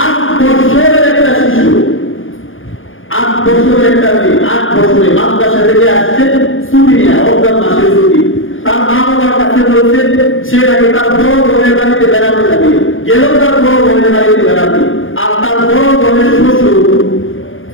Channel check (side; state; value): right; late; 0.58 ms